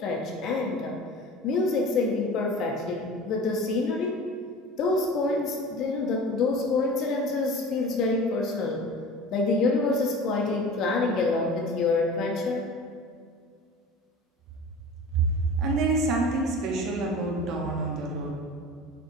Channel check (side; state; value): both; normal; correlation 0.37